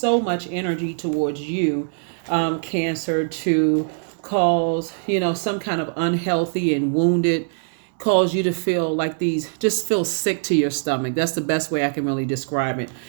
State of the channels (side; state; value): left; silent; digital silence